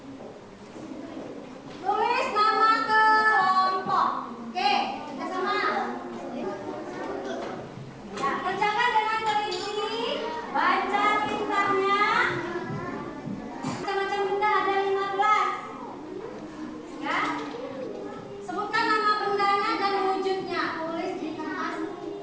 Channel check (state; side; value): identical; both; correlation 1.00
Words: Tulis nama kelompok. Oke, kita sama. Ya, kerjakan dengan teliti. Baca tintanya. Macam-macam benda ada 15. Ya. Sebutkan nama bendanya dan wujudnya. Tulis di kertas